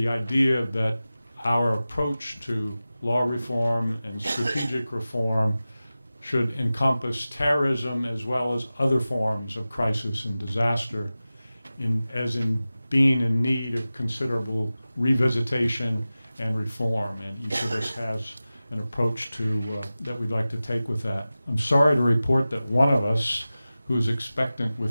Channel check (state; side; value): inverted; both; correlation -0.96